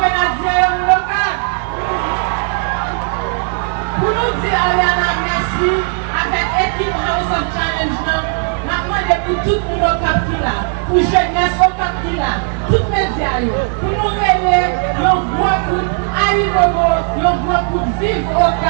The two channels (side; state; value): left; quieter; 38.7 dB